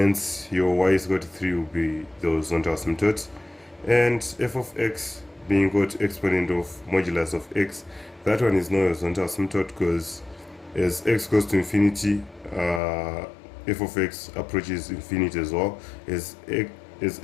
your y is equal to 3 will be the horizontal asymptote. And f of x being equal to exponent of modulus of x, that one is no horizontal asymptote, because as x goes to infinity, f of x approaches infinity as well. As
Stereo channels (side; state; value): right; drops out; at 12.8 s